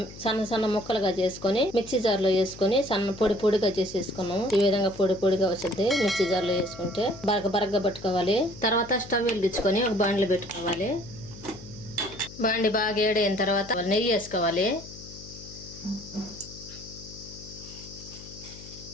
సన్న సన్న ముక్కలుగా చేసుకొని మిక్సీ జార్లో వేసుకొని సన్న పొడి పొడిగా చేసేసుకున్నాము. ఈ విధంగా పొడి పొడిగా వచ్చింది. మిక్సీ జార్లో వేసుకుంటే బరగగా పట్టుకోవాలి. తర్వాత స్టవ్ వెలిగించుకొని ఒక బాండ్లు పెట్టుకోవాలి. బాండి బాగా ఏడైన తర్వాత నెయ్యి వేసుకోవాలి.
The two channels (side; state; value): left; noise; hum, 16 dB below the sound